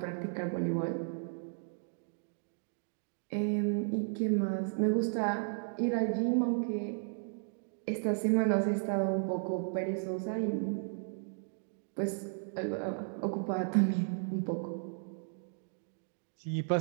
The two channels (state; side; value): silent; left; digital silence